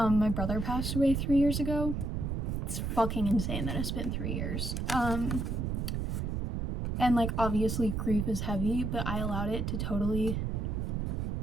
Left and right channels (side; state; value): right; noise; rumble, 1 dB below the sound